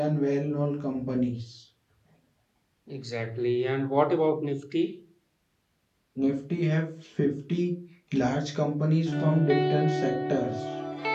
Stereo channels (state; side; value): identical; both; correlation 1.00